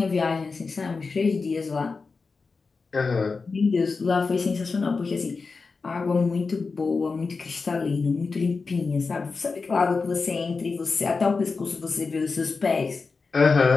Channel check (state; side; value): quieter; right; 4.4 dB